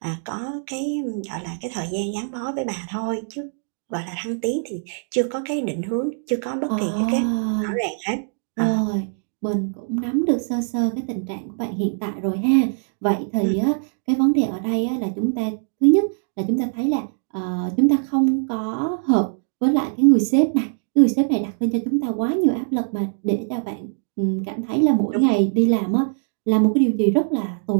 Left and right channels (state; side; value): silent; left; digital silence